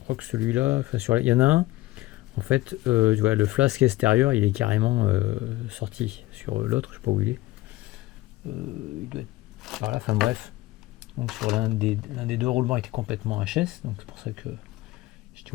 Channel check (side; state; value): right; quieter; 17.9 dB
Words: que celui-là, il y en a un. En fait, tu vois, le flasque extérieur, il est carrément sorti. Sur l'autre, je sais pas où il est. Il doit être par là. Enfin bref. Donc sur l'un des deux roulements était complètement HS. Donc c'est pour ça que j'étais